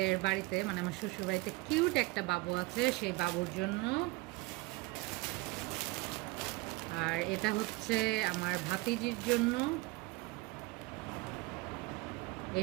বাড়িতে, মানে আমার শ্বশুর বাড়িতে কিউট একটা বাবু আছে, সেই বাবুর জন্য। আর এটা হচ্ছে আমার ভাতিজির জন্য।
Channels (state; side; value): quieter; left; 23.0 dB